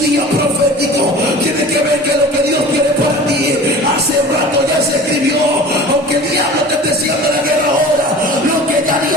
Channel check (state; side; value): normal; both; correlation 0.40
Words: día profético, tiene que ver que lo que Dios tiene para ti hace rato ya se escribió. Aunque el diablo te esté haciendo la guerra ahora, lo que ya